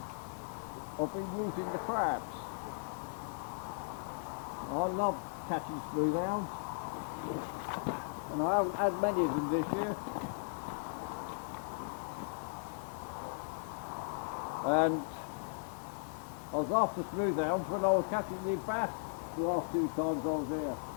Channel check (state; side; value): silent; right; 53 dB below the other